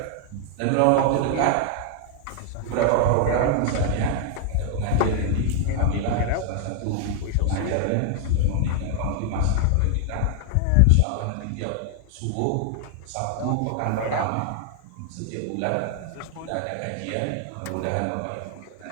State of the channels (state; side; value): different; both; correlation 0.00